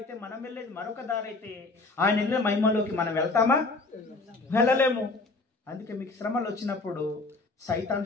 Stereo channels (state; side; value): quieter; right; 3.5 dB